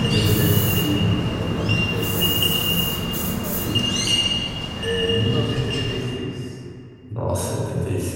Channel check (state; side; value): identical; both; correlation 1.00